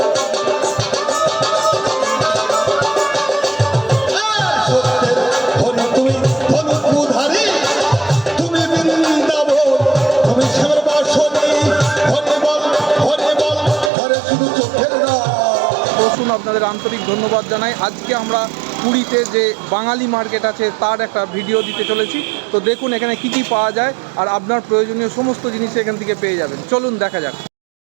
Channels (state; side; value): drops out; left; at 13.9 s